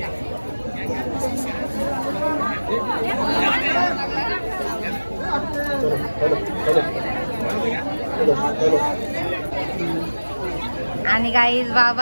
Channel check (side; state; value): both; inverted; correlation -1.00